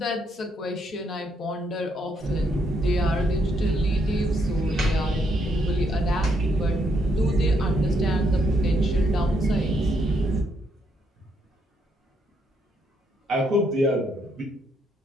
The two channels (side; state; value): both; normal; correlation 0.75